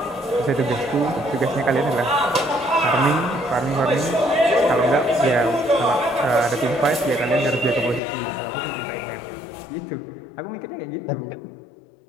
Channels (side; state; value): right; drops out; at 8.0 s